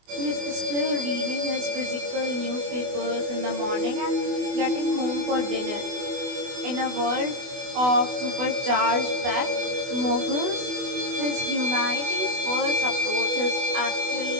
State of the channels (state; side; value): late; left; 24 ms